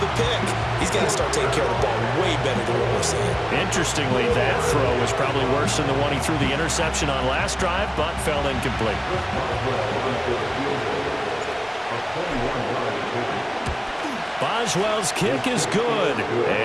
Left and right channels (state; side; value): identical; both; correlation 1.00